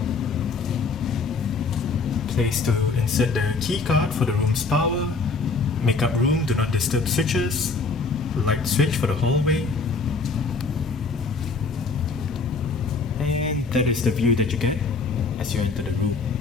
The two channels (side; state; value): right; quieter; 4.3 dB